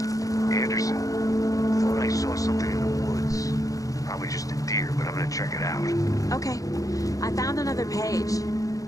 Anderson, thought I saw something in the woods. Probably just a deer, but I'm gonna check it out. Okay. I found another page.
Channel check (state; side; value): late; right; 0.17 ms